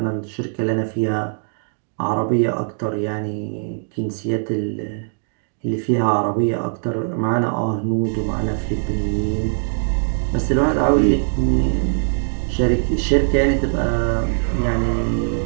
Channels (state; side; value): silent; left; digital silence